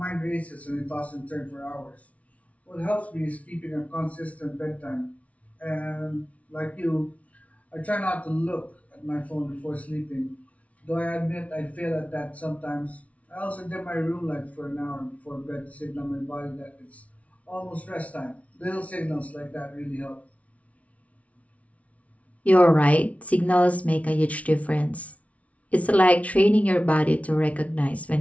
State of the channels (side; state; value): right; late; 0.066 ms